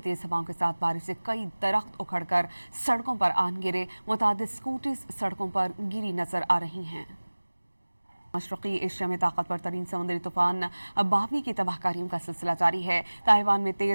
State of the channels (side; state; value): both; inverted; correlation -1.00